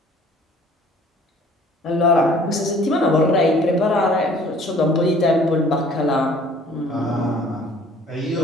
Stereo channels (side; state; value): both; normal; correlation 0.53